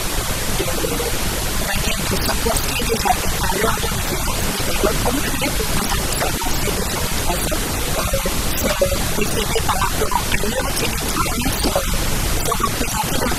on va dire de se construire déjà des valeurs de référence, des valeurs communes pour que ça puisse avancer déjà de toute façon, se référer par rapport à leur territoire, se représenter leur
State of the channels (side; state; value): both; identical; correlation 1.00